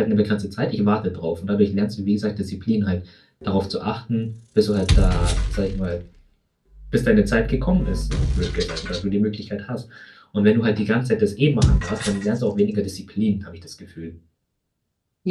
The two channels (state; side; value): identical; both; correlation 1.00